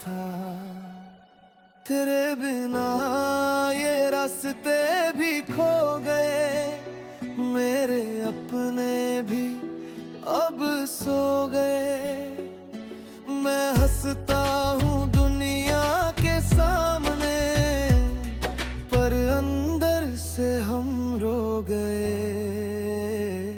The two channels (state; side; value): identical; both; correlation 1.00